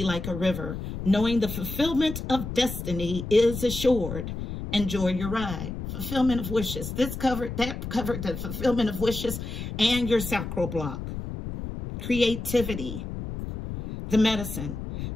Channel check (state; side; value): noise; left; rumble, 7 dB below the sound